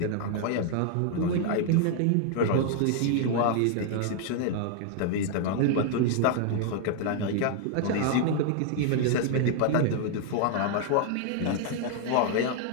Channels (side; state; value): both; different; correlation 0.00